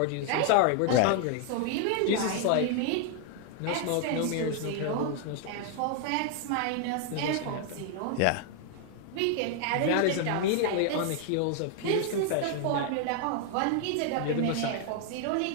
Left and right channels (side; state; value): both; different; correlation 0.00